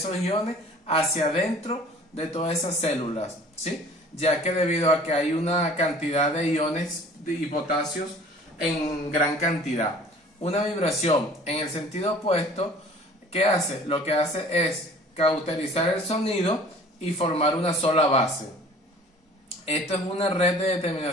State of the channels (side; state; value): both; normal; correlation 0.49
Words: iones hacia adentro de todas esas células, ¿sí? Ya que debido a que hay una cantidad de iones y potasios en gran cantidad. Una vibración en el sentido opuesto, ¿qué hace? Lo que hace es cauterizar el sonido y formar una sola base. Esto es una red de